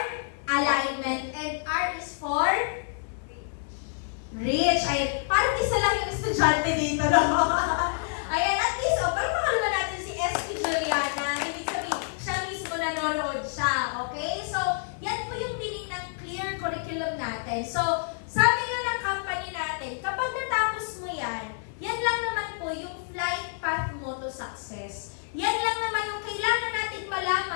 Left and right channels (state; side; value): silent; right; digital silence